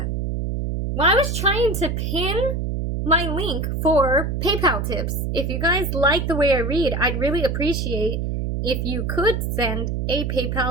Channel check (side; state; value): right; noise; hum, 1 dB below the sound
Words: When I was trying to pin my link for PayPal tips. If you guys like the way I read, I'd really appreciate if you could send a